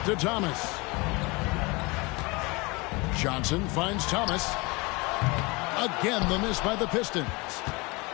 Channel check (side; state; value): right; quieter; 25.8 dB